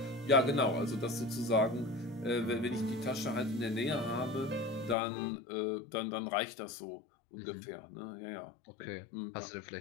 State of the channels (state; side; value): drops out; right; at 5.0 s